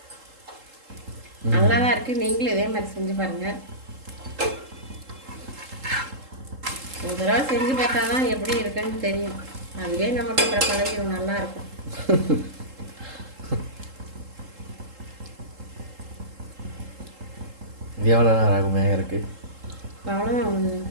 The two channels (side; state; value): left; late; 3.7 ms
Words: நல்லா தான் இருக்குது. நீங்களும் இதே மாதிரி செஞ்சு பாருங்கள். ஒரு தடவை செஞ்சு பார்த்தா தான் எப்படி இருக்குன்னு தெரியும். அதுவே நமக்கு அப்புறம் பழகிடும். நல்லாயிருக்கும். எவ்வளோ நேரம் ஆகும் வேக இருக்குது? அவ்வளோதான்.